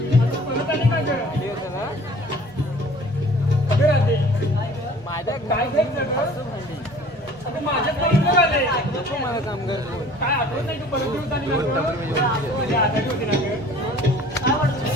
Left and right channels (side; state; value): both; normal; correlation 0.49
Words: परत आली का ग अगं राधे माझ्या काय घ्यायचं ग अगं माझ्याच परत आले नको मला काम कर काय आठवत नाही तू परत दिवस आली ना ग आजारी होती ना ग काय वाटतं